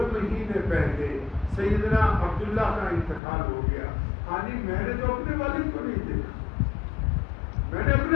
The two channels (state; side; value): drops out; right; at 3.2 s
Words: مہینے پہلے سیدنا عبداللہ کا انتقال ہو گیا۔ ہانی میں نے تو اپنے والد کو نہیں دیکھا، میں نے اپنے